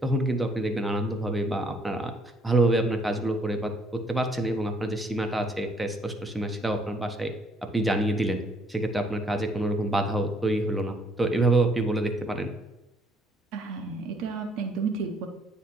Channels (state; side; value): normal; both; correlation 0.66